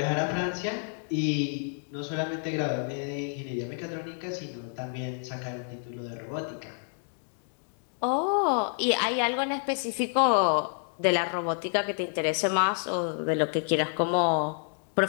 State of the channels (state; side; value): silent; right; 59 dB below the other